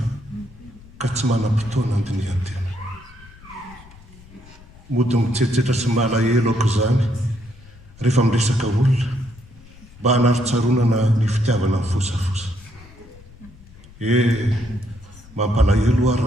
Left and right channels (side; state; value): left; noise; rumble, 22 dB below the sound